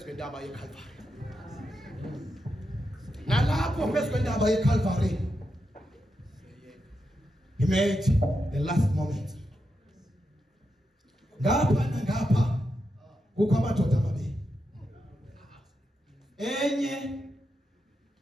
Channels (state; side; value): normal; both; correlation 0.86